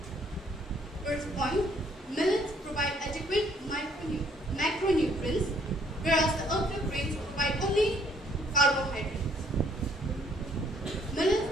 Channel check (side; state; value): both; normal; correlation 0.64